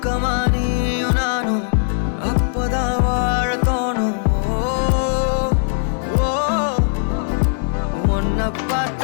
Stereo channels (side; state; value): right; silent; digital silence